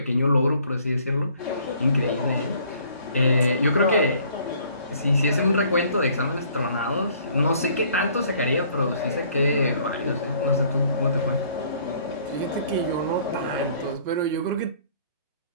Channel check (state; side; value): inverted; both; correlation -0.58